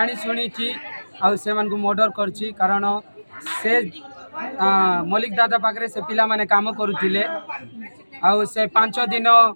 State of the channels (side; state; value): both; inverted; correlation -1.00